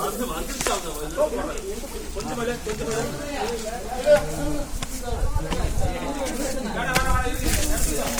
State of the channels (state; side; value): identical; both; correlation 1.00